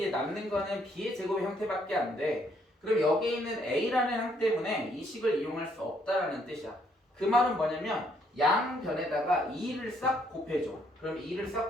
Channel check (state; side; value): normal; both; correlation 0.70